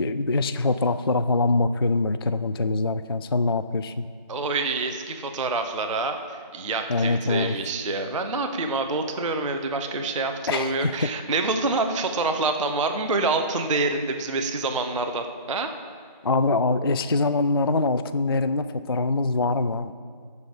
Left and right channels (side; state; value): both; inverted; correlation -0.40